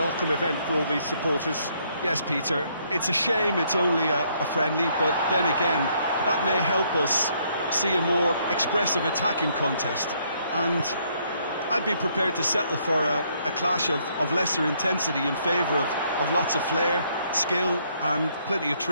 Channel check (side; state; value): both; inverted; correlation -0.69